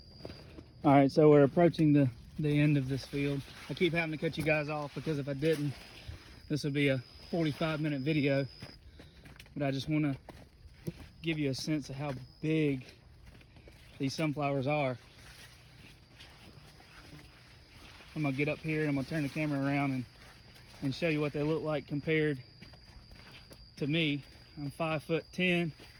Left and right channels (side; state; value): both; identical; correlation 1.00